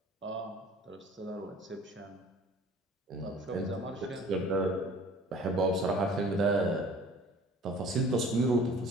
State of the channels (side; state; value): both; normal; correlation 0.48